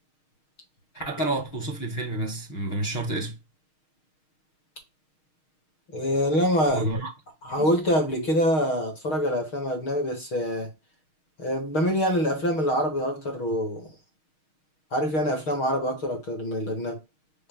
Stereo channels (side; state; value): right; late; 6.4 ms